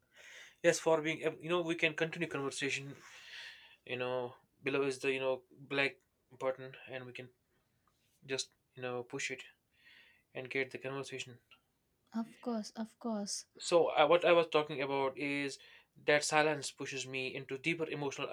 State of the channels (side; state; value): both; identical; correlation 1.00